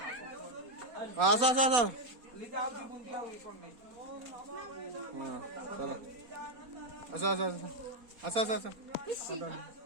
आसा लिखा आओ बुंदी आओ ये कौन नहीं हां चलो आसा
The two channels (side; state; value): left; late; 4.2 ms